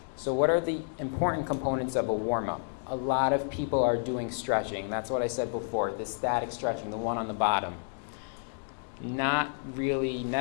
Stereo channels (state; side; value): silent; right; digital silence